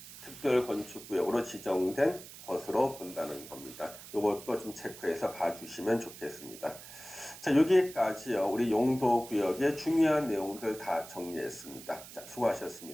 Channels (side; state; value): right; noise; hiss, 15 dB below the sound